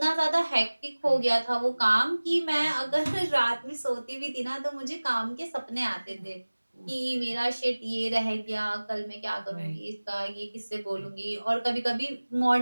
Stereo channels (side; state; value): both; inverted; correlation -1.00